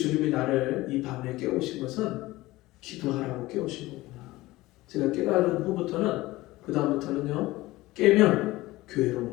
나를 이 밤에 깨우신 것은 기도하라고 깨우신 거구나. 제가 깨달은 후부터는 그 다음부터는요, 깨면 교회로 오는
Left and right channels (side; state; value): right; quieter; 18.7 dB